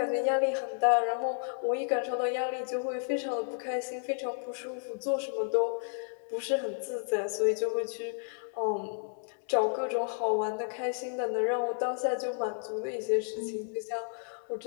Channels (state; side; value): silent; right; digital silence